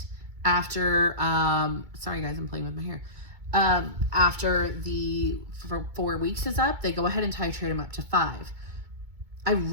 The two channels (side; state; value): left; late; 2.2 ms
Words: after, sorry guys, I'm playing with my hair. After the 4 weeks is up, they go ahead and titrate them up to 5. I